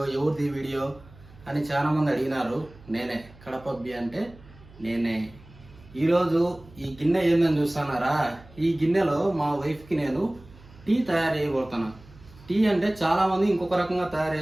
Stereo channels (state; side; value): noise; right; hum, 23 dB below the sound